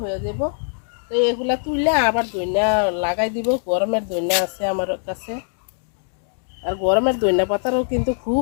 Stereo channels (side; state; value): right; silent; 64 dB below the other